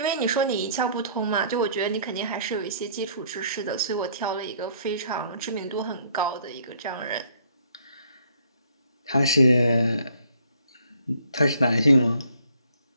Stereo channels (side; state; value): both; inverted; correlation -0.62